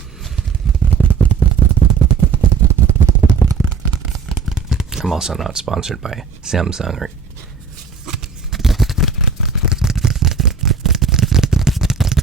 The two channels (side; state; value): left; quieter; 5.5 dB